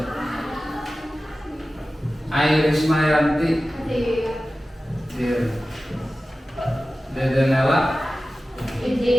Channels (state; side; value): normal; both; correlation 0.95